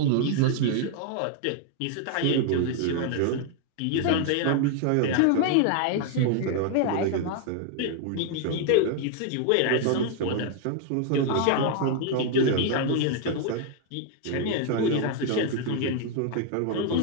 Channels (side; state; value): both; different; correlation 0.00